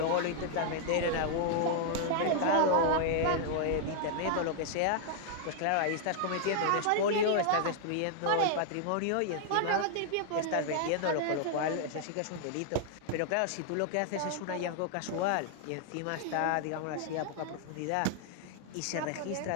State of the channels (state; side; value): different; both; correlation 0.00